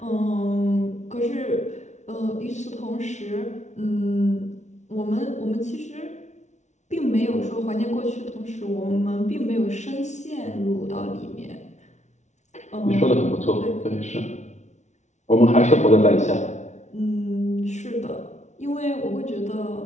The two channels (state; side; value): late; right; 0.33 ms